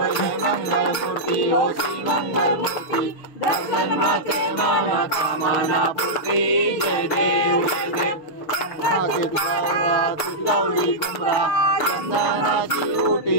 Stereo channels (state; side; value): late; right; 6.7 ms